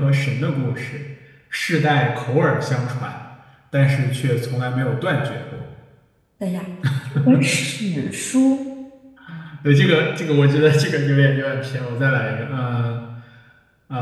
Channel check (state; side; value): identical; both; correlation 1.00